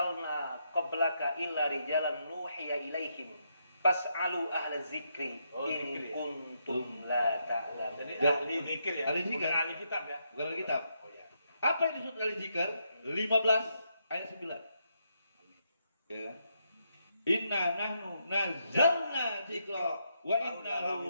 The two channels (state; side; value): inverted; both; correlation -0.79